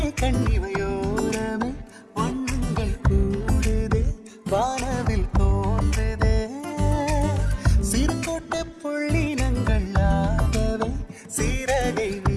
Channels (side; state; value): both; identical; correlation 1.00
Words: கண்ணிவையோரமே வண்ணங்கள் கூடுதே வானவில் தோன்றுதே சிறுகோட்ட புள்ளினங்கள் ஆகவே சீரகை